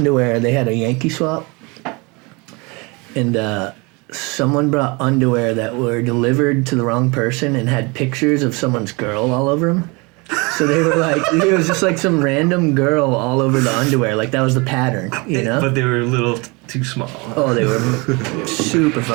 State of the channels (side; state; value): left; quieter; 27.8 dB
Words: They had a Yankee swap, and someone brought underwear that were delivered to the wrong person and had pictures of someone's girl all over them. So they were like, it was just like some random girl all over the underwear. Like that was the pattern, you know? But they were a little too small. Oh, they were super